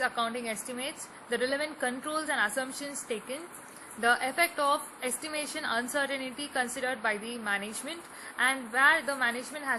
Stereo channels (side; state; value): both; identical; correlation 1.00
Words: estimates, the relevant controls and assumptions taken, the effect of estimation uncertainty considered by the management, and where the management